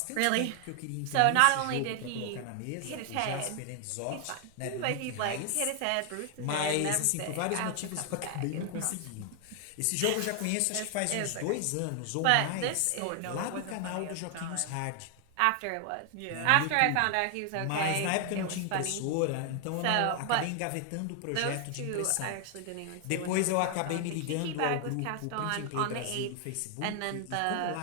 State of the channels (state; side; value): different; both; correlation 0.00